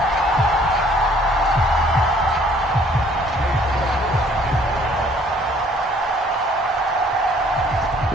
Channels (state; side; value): normal; both; correlation 0.59